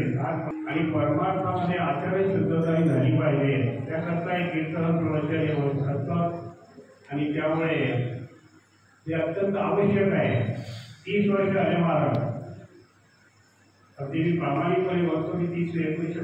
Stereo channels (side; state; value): both; identical; correlation 1.00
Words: आणि परमार्थामध्ये आचरण शुद्धता झाली पाहिजे, त्याकरता एक कीर्तन प्रवचन होत असतं आणि त्यामुळे ते अत्यंत आवश्यक आहे. 30 वर्ष आले महाराज, अगदी मी प्रामाणिकपणे म्हणतो की